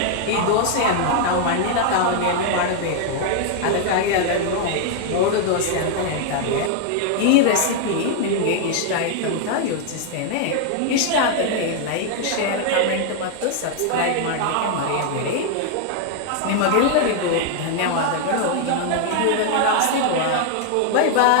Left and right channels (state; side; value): different; both; correlation 0.00